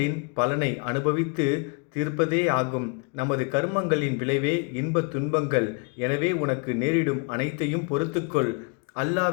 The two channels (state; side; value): quieter; right; 33.9 dB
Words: பலனை அனுபவித்து தீர்ப்பதே ஆகும். நமது கர்மங்களின் விளைவே இன்பத் துன்பங்கள். எனவே உனக்கு நேரிடும் அனைத்தையும் பொறுத்துக்கொள்.